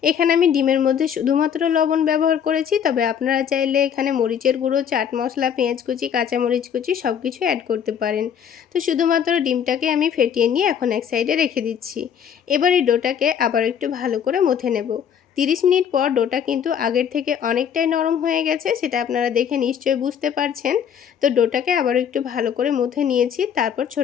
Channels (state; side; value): quieter; right; 8.2 dB